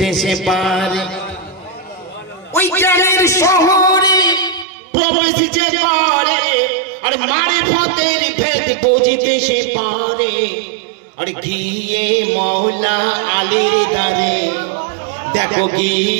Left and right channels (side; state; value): left; drops out; at 4.7 s